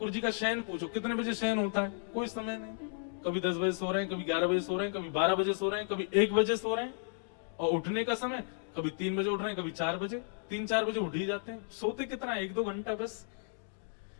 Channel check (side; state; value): right; silent; digital silence